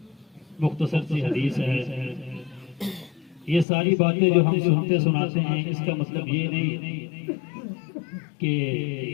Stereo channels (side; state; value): right; drops out; at 3.7 s